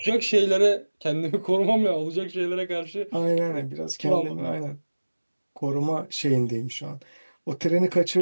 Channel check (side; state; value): both; inverted; correlation -1.00